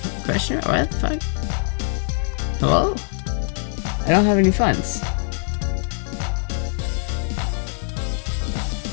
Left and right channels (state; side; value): silent; right; 56 dB below the other